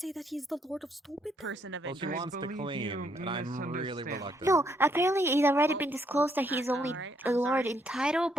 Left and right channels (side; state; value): both; normal; correlation 0.73